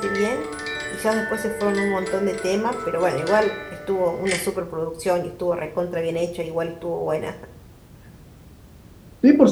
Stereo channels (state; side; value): identical; both; correlation 1.00